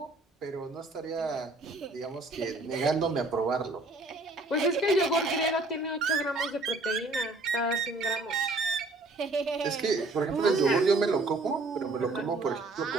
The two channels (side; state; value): left; quieter; 3.1 dB